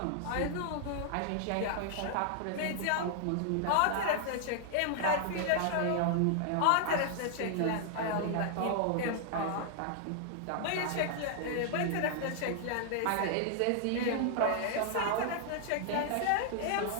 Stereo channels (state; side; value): different; both; correlation -0.01